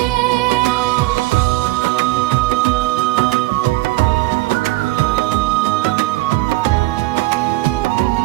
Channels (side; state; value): left; quieter; 18.9 dB